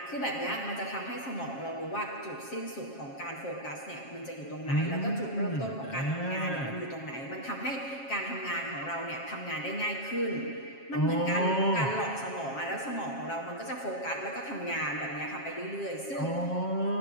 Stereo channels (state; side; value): late; right; 7.4 ms